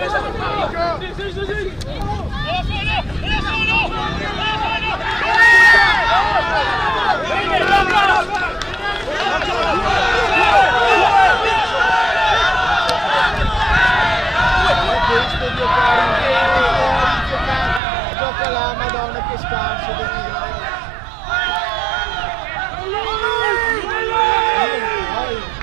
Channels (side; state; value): left; drops out; at 17.8 s